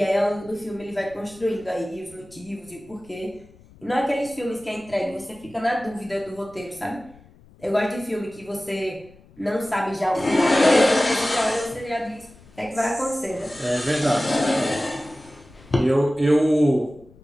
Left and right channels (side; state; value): left; noise; rumble, 25 dB below the sound